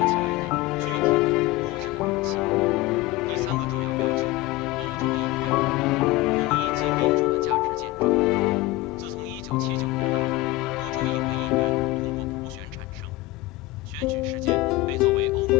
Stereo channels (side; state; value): right; quieter; 18.3 dB